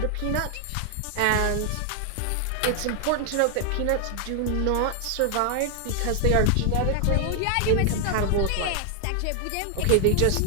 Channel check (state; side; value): different; both; correlation 0.00